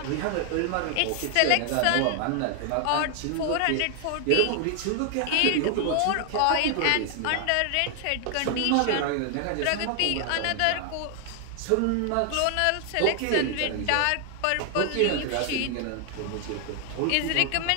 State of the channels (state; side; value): different; both; correlation 0.00